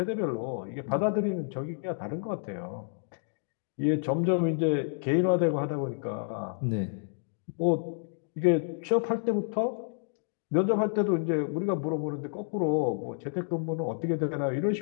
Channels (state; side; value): silent; right; digital silence